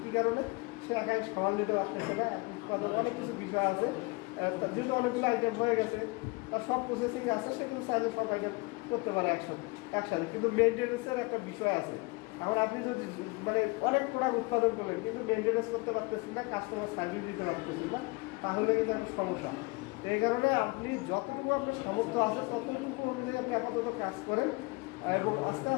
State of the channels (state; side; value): quieter; right; 26.5 dB